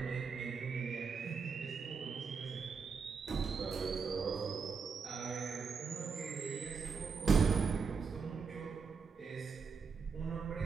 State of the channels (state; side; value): quieter; left; 5.4 dB